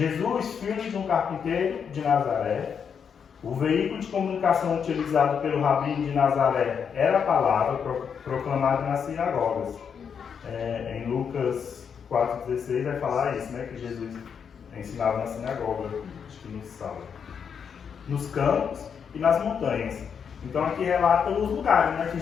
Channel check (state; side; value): quieter; right; 7.0 dB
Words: filho de um carpinteiro de Nazaré, o veículo de comunicação utilizado pelo rabino de Nazaré era a palavra proclamada nas sinagogas. Em Lucas 4,16 vai falar isso, né? Que Jesus ensinava na sinagoga, acho que no sábado. Nos campos e nas montanhas. Então aqui relata os lugares, né, que